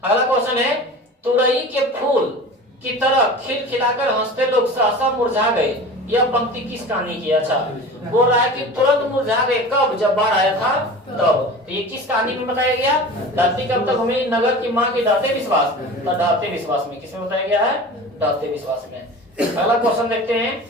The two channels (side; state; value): both; normal; correlation 0.36